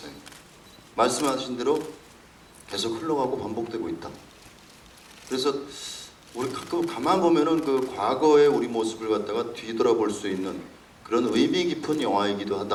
말씀하신 대로 계속 흘러가고 반복되고 있다. 그래서 우리 가끔 가만 보면은 그 과거의 우리 모습을 갖다가 뒤돌아볼 수 있는 그런 의미 깊은 영화이기도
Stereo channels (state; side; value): identical; both; correlation 1.00